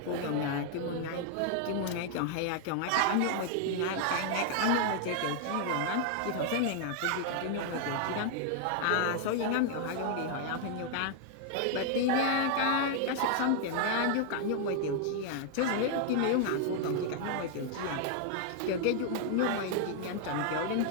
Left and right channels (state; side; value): different; both; correlation 0.00